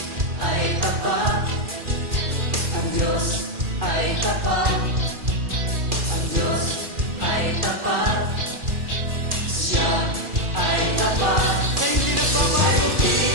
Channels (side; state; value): left; late; 2.4 ms